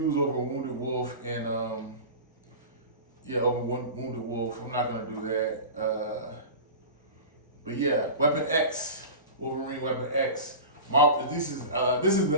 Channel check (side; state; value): both; inverted; correlation -0.32